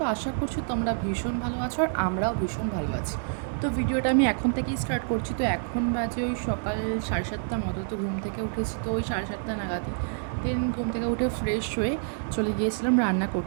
আশা করছি তোমরা ভীষণ ভালো আছো আর আমরাও ভীষণ ভালো আছি। তো ভিডিওটা আমি এখন থেকেই স্টার্ট করছি। তো এখন বাজে ওই সকাল 7:30 মতো। তো ঘুম থেকে উঠেছি তো ওই 7:30 নাগাদই। দেন ঘুম থেকে উঠে ফ্রেশ হয়ে চলে গিয়েছিলাম রান্না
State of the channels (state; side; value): silent; left; 60 dB below the other